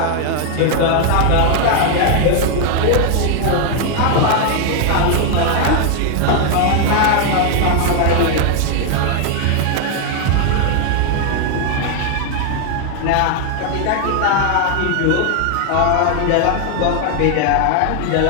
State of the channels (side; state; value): both; different; correlation 0.00